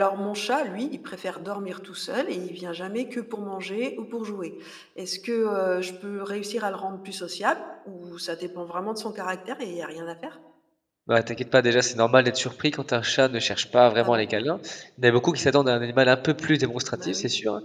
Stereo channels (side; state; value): both; identical; correlation 1.00